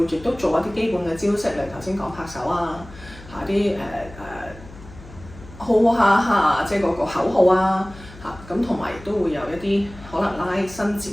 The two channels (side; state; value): left; noise; hum, 18 dB below the sound